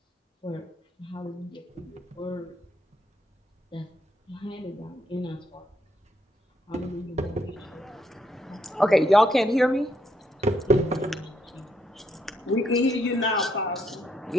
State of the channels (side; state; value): both; normal; correlation 0.75